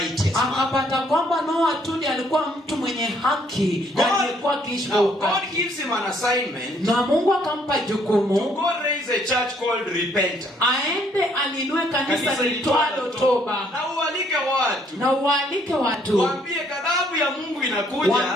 man. Akapata kwamba Noa tu ndiye alikuwa mtu mwenye haki na alikuwa akiishi kwa God haki. gives him an assignment. Na Mungu akampa jukumu. To go raise a church called Repentance. Aende alinue kanisa litwalo toba. Na ualike watu. Na ualike watu. Waambie ghadhabu ya Mungu inakuja.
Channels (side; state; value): both; normal; correlation 0.66